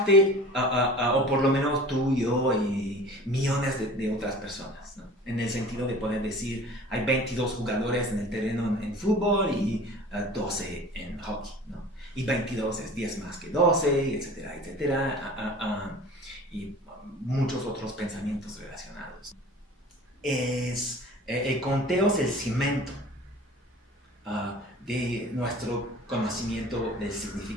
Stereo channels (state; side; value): normal; both; correlation 0.42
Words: o por lo menos tú, yo y millones de otras personas, ¿no? En el sentido de poder decir, hay 22 jugadores en el terreno en fútbol y 12 en hockey, ¿no? Y 22 es 10 más que 12, etcétera, etcétera, y muchos otros pensamientos relacionados. El conteo es el cimento de nuestro conocimiento del